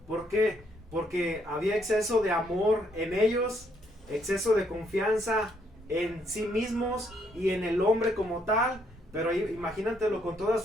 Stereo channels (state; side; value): normal; both; correlation 0.71